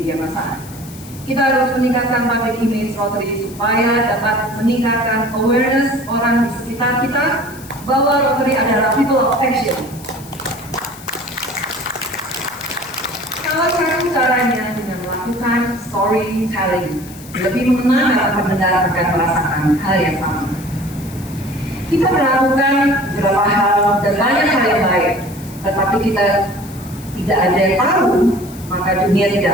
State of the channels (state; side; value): noise; left; hiss, 19 dB below the sound